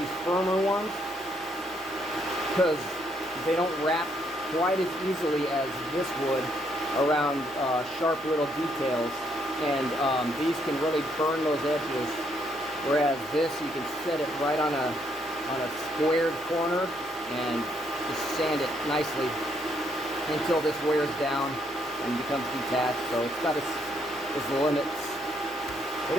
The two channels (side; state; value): both; normal; correlation 0.72